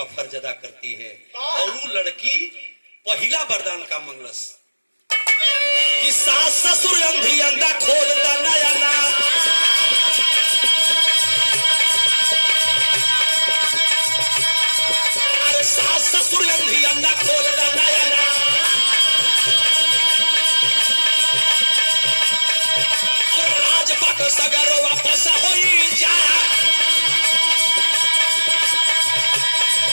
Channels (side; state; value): both; inverted; correlation -1.00